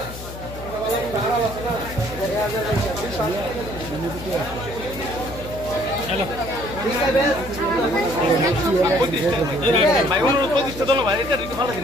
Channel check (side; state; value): left; noise; hum, 12 dB below the sound